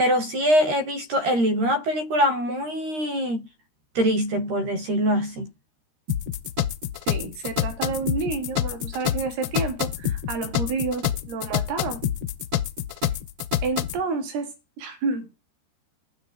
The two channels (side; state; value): left; late; 13 ms